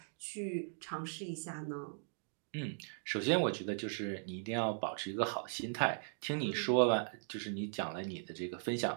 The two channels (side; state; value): left; silent; digital silence